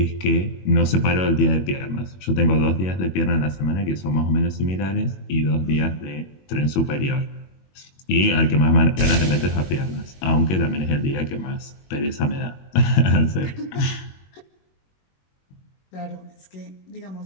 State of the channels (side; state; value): right; late; 21 ms